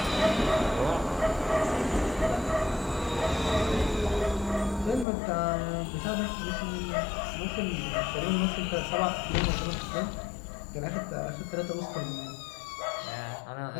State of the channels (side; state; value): right; drops out; at 5.1 s